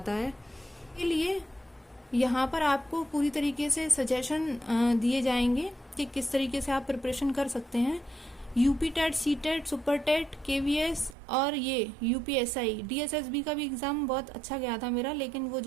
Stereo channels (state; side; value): drops out; left; at 11.2 s